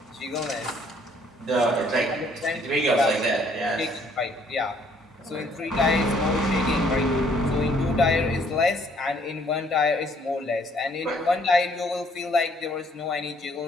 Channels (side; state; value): both; normal; correlation 0.63